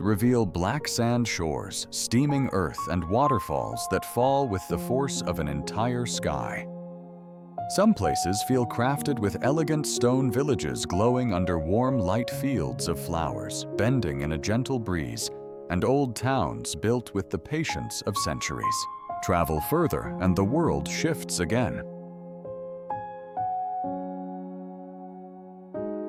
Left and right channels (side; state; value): both; identical; correlation 1.00